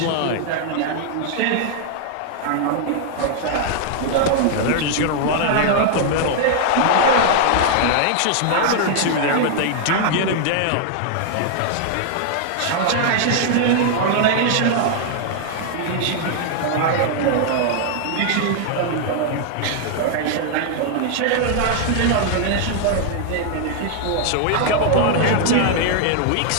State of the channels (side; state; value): both; different; correlation 0.00